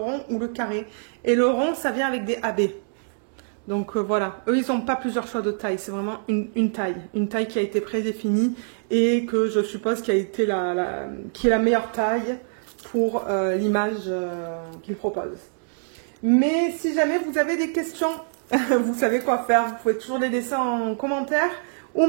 ou le carré. Et le rond, ça vient avec des AB. Donc voilà, eux ils n'ont pas plusieurs choix de taille, c'est vraiment une taille qui a été prédéfinie et que je suppose qui a été qui est la meilleure taille pour l'image qu'il propose. Mais si jamais vous avez des questions, vous savez quoi faire. Vous pouvez toujours les laisser en commentaire ou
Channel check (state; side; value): silent; left; digital silence